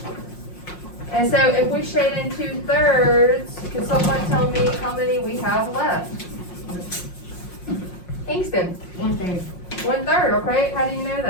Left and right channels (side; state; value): right; late; 5.6 ms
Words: And so if we shade in 2/3, can someone tell me how many we have left? Kingston, 1/3. 1/3, okay, how do you know